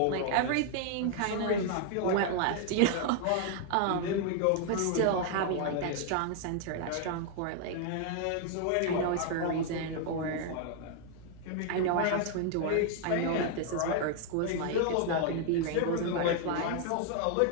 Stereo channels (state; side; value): different; both; correlation 0.00